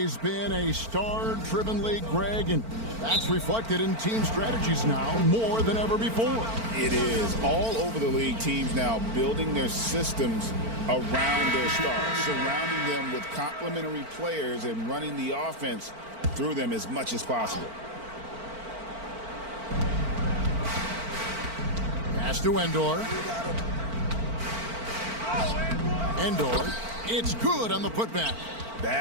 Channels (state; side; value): late; left; 4.4 ms